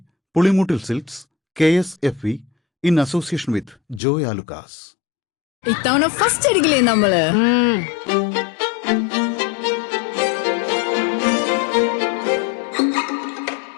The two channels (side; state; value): right; drops out; at 4.0 s